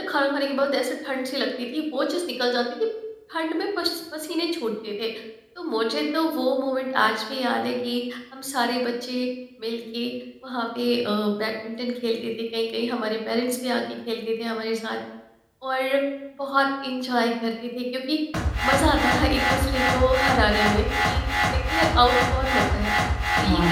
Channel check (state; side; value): identical; both; correlation 1.00